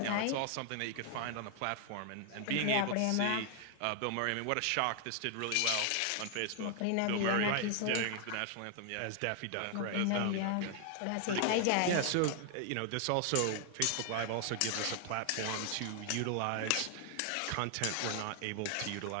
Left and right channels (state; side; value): different; both; correlation 0.00